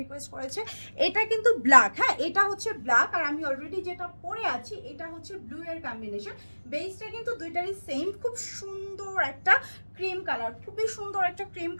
রিকোয়েস্ট করেছে। এটা কিন্তু ব্ল্যাক, হ্যাঁ এটা হচ্ছে ব্ল্যাক, আর আমি অলরেডি যেটা পরে আছি এটা হচ্ছে ব্লু এর কম্বিনেশন। বেসটা কিন্তু দুইটারই সেম, খুব সুন্দর একটা ক্রিম কালার, খুবই সুন্দর একটা ক্রিম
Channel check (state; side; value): inverted; both; correlation -1.00